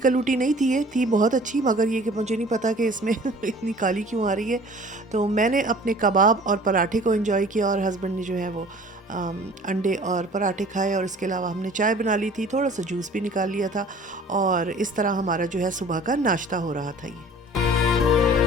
नहीं थी, ये थी बहुत अच्छी, मगर ये कि मुझे नहीं पता कि इसमें इतनी काली क्यों आ रही है। तो मैंने अपने कबाब और पराठे को एंजॉय किया और हस्बैंड ने जो है वो अंडे और पराठे खाए, और इसके अलावा हमने चाय बना ली थी, थोड़ा सा जूस भी निकाल लिया था, और इस तरह हमारा जो है सुबह का नाश्ता हो रहा था ये।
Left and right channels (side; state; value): both; normal; correlation 0.48